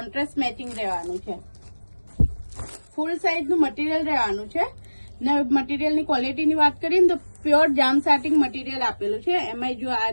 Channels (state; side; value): inverted; both; correlation -1.00